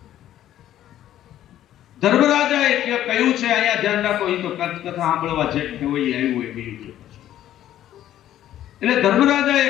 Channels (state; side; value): quieter; right; 12.3 dB